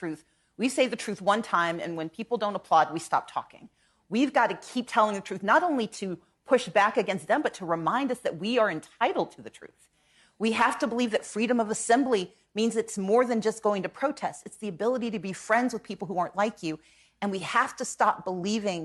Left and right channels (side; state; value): both; identical; correlation 1.00